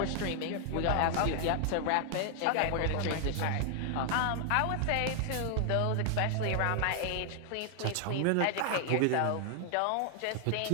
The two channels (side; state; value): both; different; correlation 0.00